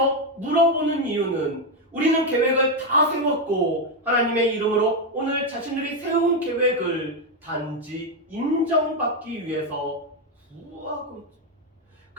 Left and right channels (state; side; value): normal; both; correlation 0.05